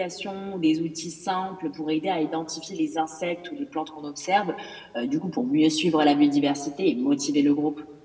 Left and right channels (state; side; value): identical; both; correlation 1.00